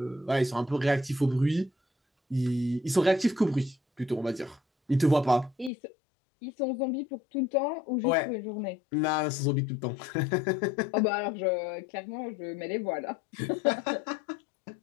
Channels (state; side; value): drops out; right; at 5.7 s